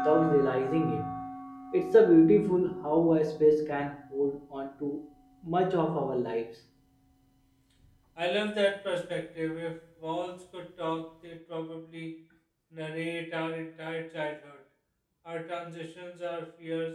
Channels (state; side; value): identical; both; correlation 1.00